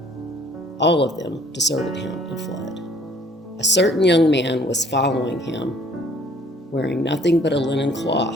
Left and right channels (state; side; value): normal; both; correlation 0.58